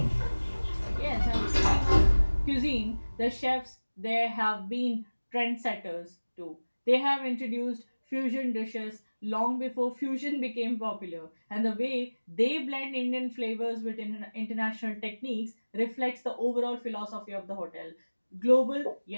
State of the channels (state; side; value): inverted; both; correlation -1.00